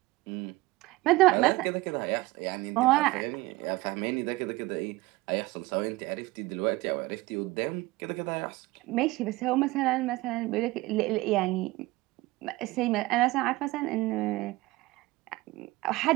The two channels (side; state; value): left; quieter; 20.3 dB